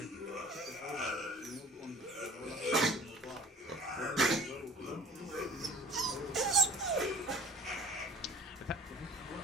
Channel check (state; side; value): normal; both; correlation 0.46